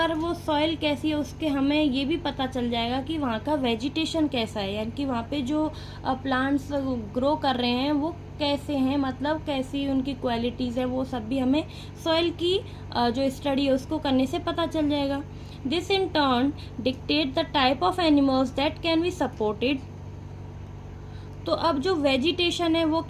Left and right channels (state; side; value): identical; both; correlation 1.00